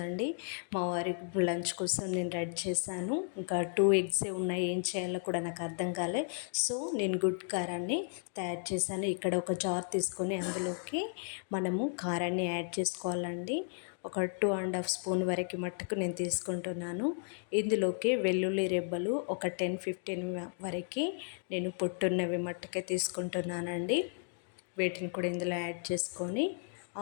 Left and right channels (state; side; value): silent; right; 55 dB below the other